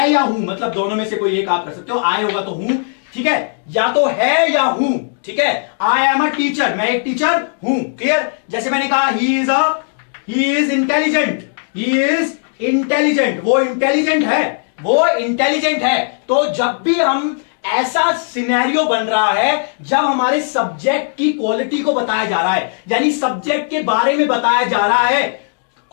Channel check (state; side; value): silent; right; digital silence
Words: या हूं, मतलब दोनों में से कोई एक आप कर सकते हो, आई होगा तो हूं, ठीक है, या तो है या हूं। ठीक है, आई एम अ टीचर, मैं एक टीचर हूं। क्लियर? जैसे मैंने कहा he is intelligent, he is intelligent, वो इंटेलिजेंट है, वो इंटेलिजेंट है। तो जब भी हम ऐसा सिनेरियो बन रहा है जब हमारे सब्जेक्ट की क्वालिटी को बताया जा रहा है, यानी सब्जेक्ट के बारे में बताया जा रहा है